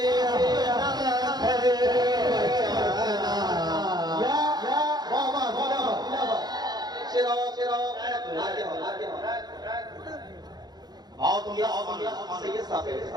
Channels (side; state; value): left; late; 0.20 ms